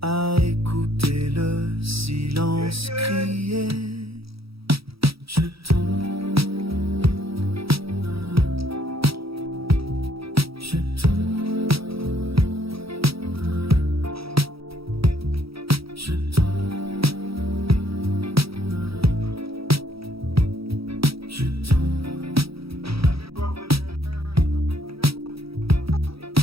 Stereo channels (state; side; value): late; left; 0.76 ms